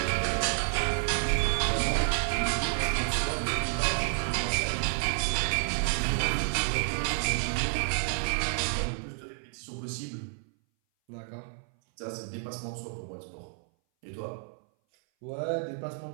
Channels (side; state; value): left; silent; 58 dB below the other